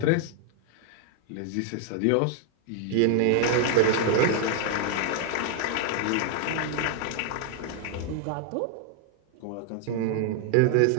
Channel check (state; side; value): different; both; correlation 0.00